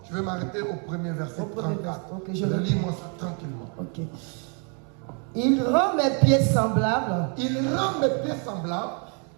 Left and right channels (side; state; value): left; quieter; 38.8 dB